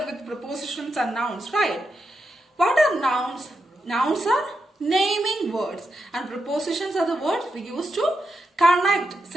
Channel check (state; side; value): normal; both; correlation 0.85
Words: with prepositions and nouns, right? What are nouns? Nouns are naming words, and prepositions are the words we use to connect